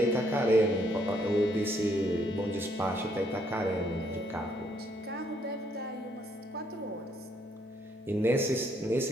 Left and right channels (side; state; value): both; normal; correlation 0.70